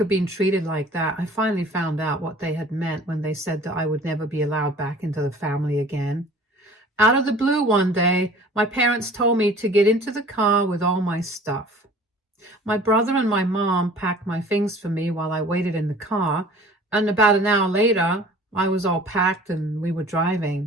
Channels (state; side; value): normal; both; correlation 0.47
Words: being treated like that, I finally found out what they had meant when they said that I would never be allowed back into the family again. Out of the blue one day, my parents told me to get into the car with all my stuff. My brother and my mom packed my things for me while I waited in the car, and about an hour later, I was all packed and we were